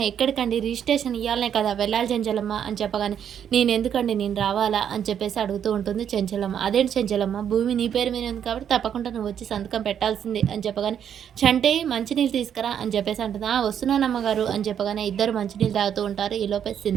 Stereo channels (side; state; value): left; quieter; 8.8 dB